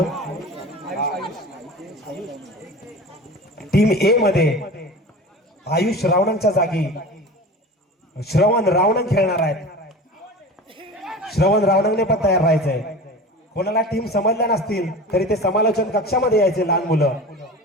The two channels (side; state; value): both; normal; correlation 0.34